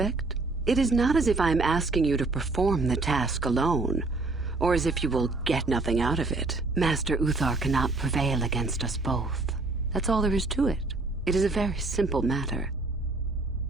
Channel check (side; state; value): left; quieter; 3.4 dB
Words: It is not as if I am asking you to perform the task alone, or as if you will get nothing out of it. Master Uthar cannot prevail against us both. That's all there is to it. It is a very simple matter.